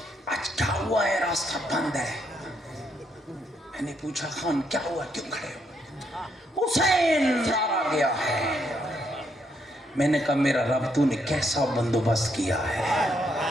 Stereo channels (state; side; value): normal; both; correlation 0.75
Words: آج کیا ہوا ہے، راستہ بند ہے؟ میں نے پوچھا خان کیا ہوا، کیوں کھڑے ہو؟ حسین مارا گیا ہے۔ میں نے کہا میرا رب تو نے کیسا بندوبست کیا ہے،